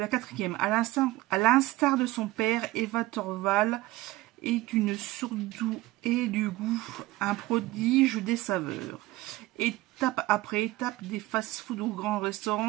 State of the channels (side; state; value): left; quieter; 18.3 dB